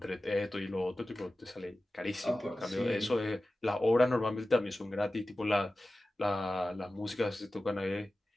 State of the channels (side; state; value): both; normal; correlation 0.95